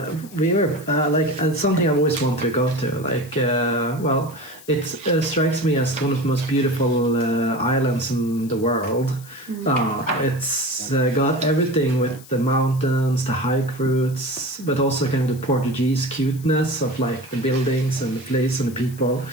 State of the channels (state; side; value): noise; left; hiss, 20 dB below the sound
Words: we were like, it's something I always wanted to go to. Like, well, it strikes me as one of the most beautiful islands in the world. It's got everything with the mountains, the hike routes, but also kind of the Portuguese cuteness of, like, the buildings and the place and the people.